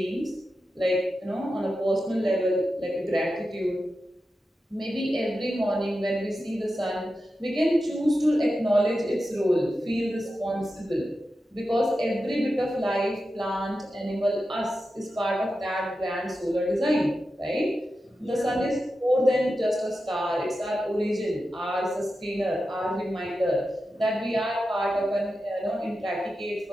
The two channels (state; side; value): normal; both; correlation 0.91